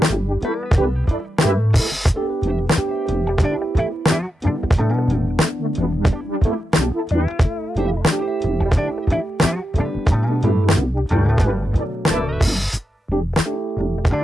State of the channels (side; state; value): both; normal; correlation 0.89